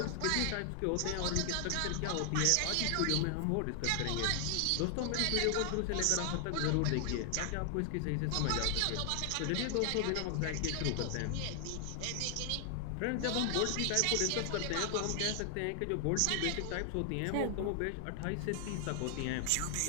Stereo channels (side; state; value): both; different; correlation 0.00